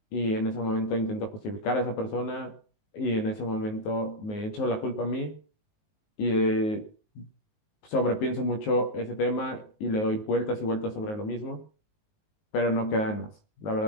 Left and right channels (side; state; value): right; late; 19 ms